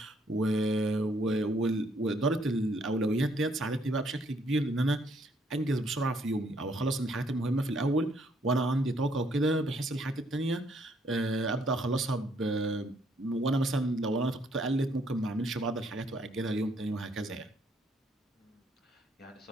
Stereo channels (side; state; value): both; normal; correlation 0.68